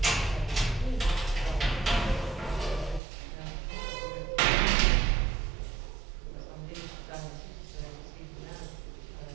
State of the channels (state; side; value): drops out; left; at 3.0 s